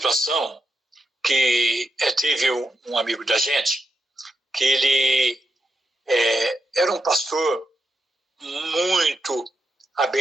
que teve um amigo da gente, que ele era um pastor muito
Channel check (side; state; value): both; normal; correlation 0.85